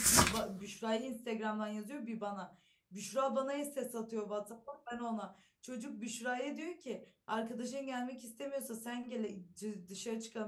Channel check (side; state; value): both; identical; correlation 1.00